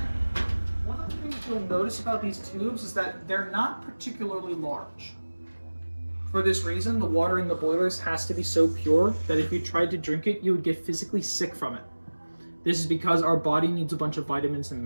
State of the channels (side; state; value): both; inverted; correlation -1.00